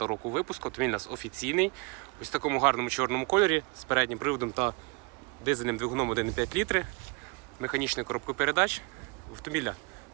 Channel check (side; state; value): left; quieter; 29.6 dB